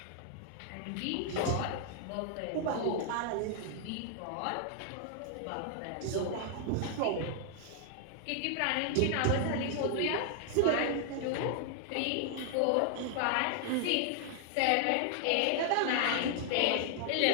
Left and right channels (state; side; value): different; both; correlation 0.00